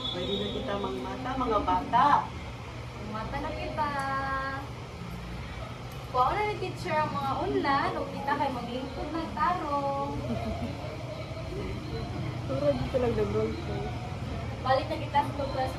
Pwede na kita mangmata, mga bata. Mata na kita. Kuha na ni teacher ang mga unlan, o kita kay maglingkod ng tarong. Puro dito lang nag-roll ko. Balik na kita sa class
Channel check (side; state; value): both; identical; correlation 1.00